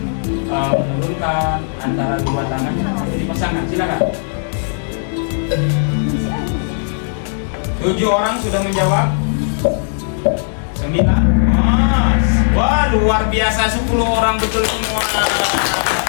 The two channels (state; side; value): silent; right; 68 dB below the other